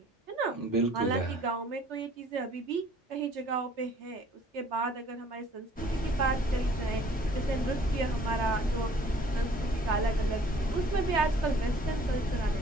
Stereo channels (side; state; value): both; normal; correlation 0.55